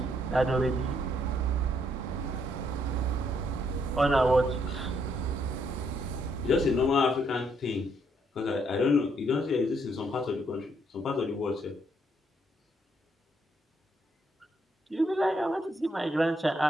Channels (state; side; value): normal; both; correlation 0.72